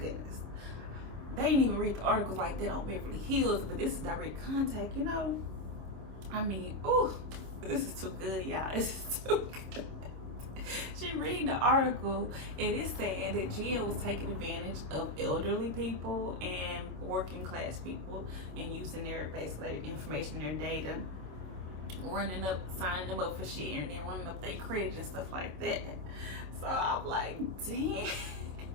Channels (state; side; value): late; left; 26 ms